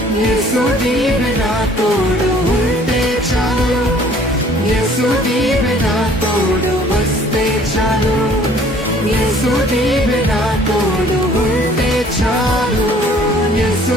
యేసు నీవే నా తోడు ఉంటే చాలు, యేసు నీవే నా తోడు వస్తే చాలు, యేసు నీవే నా తోడు ఉంటే చాలు, యేసు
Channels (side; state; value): both; normal; correlation 0.55